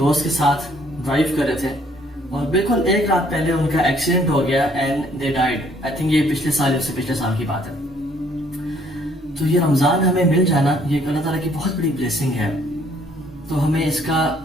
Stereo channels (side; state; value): both; normal; correlation 0.63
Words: کے ساتھ ڈرائیو کر رہے تھے اور بالکل ایک رات پہلے ان کا ایکسیڈنٹ ہو گیا and they died. I think یہ پچھلے سال کی بات ہے۔ تو یہ رمضان ہمیں مل جانا یہ اللہ تعالیٰ کی بہت بڑی بلیسنگ ہے، تو ہمیں اس کا